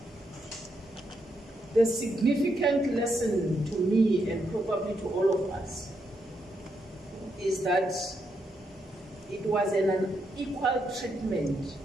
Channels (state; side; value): normal; both; correlation 0.80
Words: The significant lesson to me, and probably to all of us, is that it was an unequal treatment